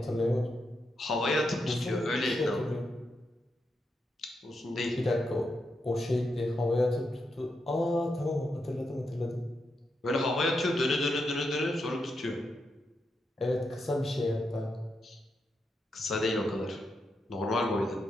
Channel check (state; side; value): normal; both; correlation 0.84